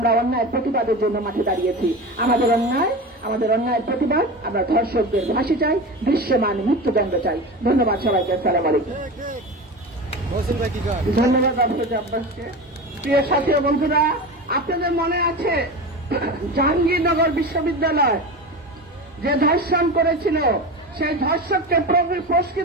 অন্যায়ের প্রতিবাদের জন্য মাঠে দাঁড়িয়েছি। আমাদের অন্যায়ের প্রতিবাদ, আমরা ধর্ষকদের ফাঁসি চাই, দৃশ্যমান মৃত্যুদণ্ড চাই। ধন্যবাদ সবাইকে, আসসালামু আলাইকুম। ধন্যবাদ আপনাকে। প্রিয় সাথী ও বন্ধুরা, আপনাদের মনে আছে জাহাঙ্গীরনগর বিশ্ববিদ্যালয় যে ধর্ষণ করেছিল, সেই ধর্ষককে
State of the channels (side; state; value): both; normal; correlation 0.27